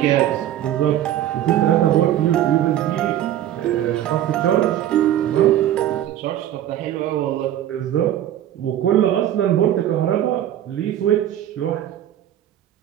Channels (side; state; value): left; quieter; 11.8 dB